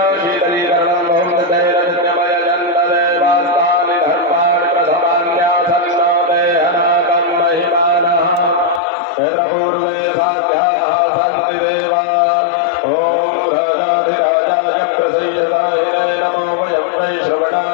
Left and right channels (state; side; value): drops out; right; at 8.8 s